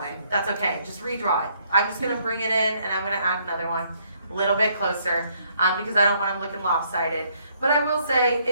way. That's okay, just redraw it. I'm just gonna bring it in and I'm gonna add another one a little bit closer because I don't want them looking lopsided. But I will say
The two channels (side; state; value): both; inverted; correlation -0.69